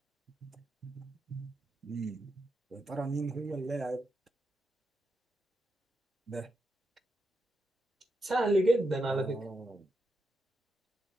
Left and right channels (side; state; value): both; normal; correlation 0.84